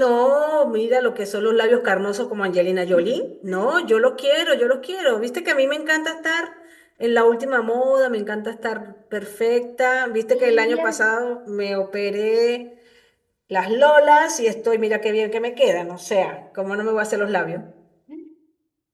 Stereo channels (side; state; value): both; identical; correlation 1.00